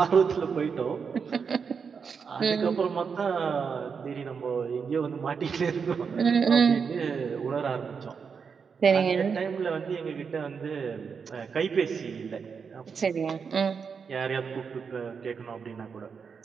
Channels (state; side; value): quieter; left; 6.0 dB